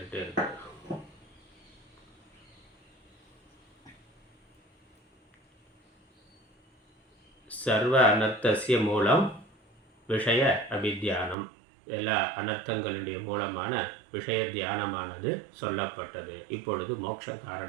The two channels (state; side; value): drops out; left; at 11.4 s